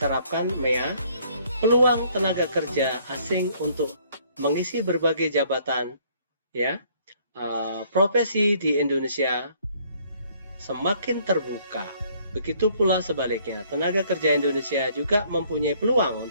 MEA, peluang tenaga kerja asing untuk mengisi berbagai jabatan ya profesi di Indonesia semakin terbuka. Begitu pula sebaliknya, tenaga kerja Indonesia juga mempunyai peluang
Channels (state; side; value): inverted; both; correlation -0.62